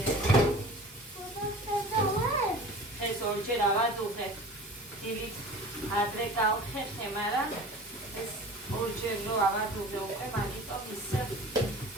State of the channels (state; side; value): normal; both; correlation 0.40